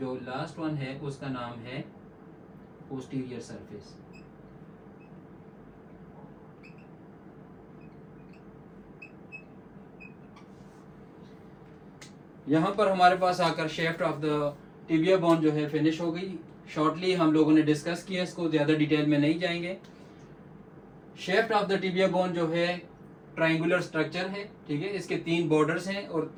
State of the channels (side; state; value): both; identical; correlation 1.00